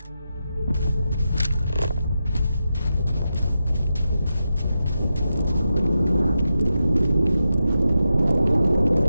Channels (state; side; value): inverted; both; correlation -0.88